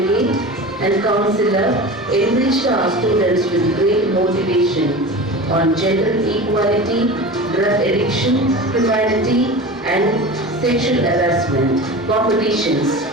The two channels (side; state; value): both; normal; correlation 0.32